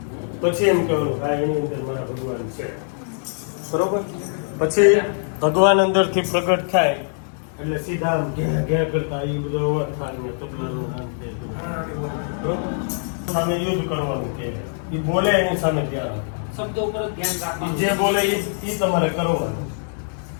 પછી એમ કહેવાનું હા એની અંદર મારા ભગવાન છે. બરોબર? પછી ભગવાન અંદરથી પ્રગટ થાય એટલે સીધા આમ ઘે કરતા એ બધો અવાજ થાય ને તબલાનું નામ છે. બરોબર? સામે યુદ્ધ કરવાનું કે એ બોલે એની સામે ધ્યાન શબ્દો ઉપર ધ્યાન ઈ રાખવાનું. જે બોલે એ તમારે કરવાનું.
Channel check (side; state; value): right; silent; 64 dB below the other